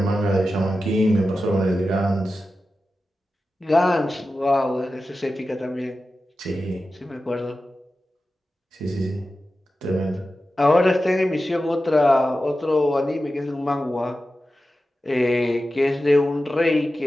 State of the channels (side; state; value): both; normal; correlation 0.93